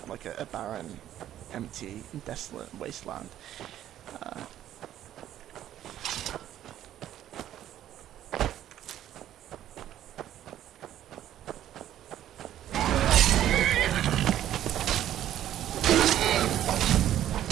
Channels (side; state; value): left; quieter; 11.9 dB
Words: like a barren, empty, desolate wasteland.